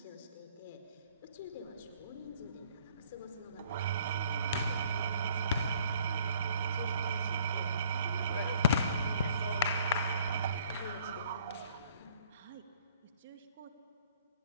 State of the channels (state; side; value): inverted; both; correlation -0.58